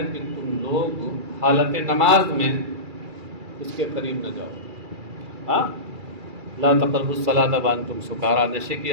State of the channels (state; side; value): late; left; 2.4 ms